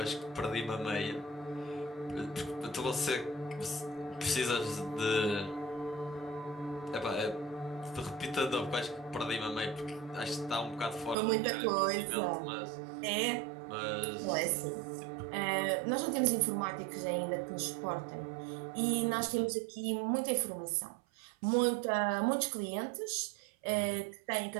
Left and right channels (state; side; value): drops out; left; at 11.2 s